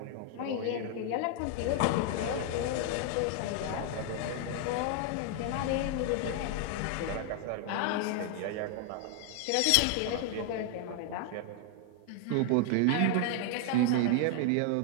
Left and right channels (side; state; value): both; different; correlation 0.00